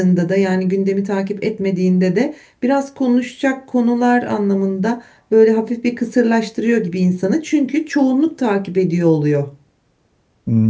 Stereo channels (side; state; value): both; identical; correlation 1.00